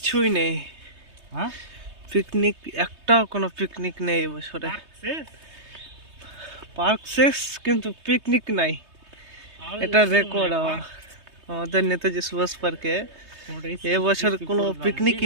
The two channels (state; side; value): late; left; 3.2 ms